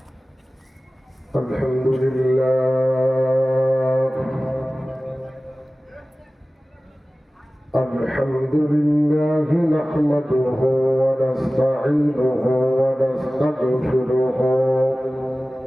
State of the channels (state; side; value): normal; both; correlation 0.97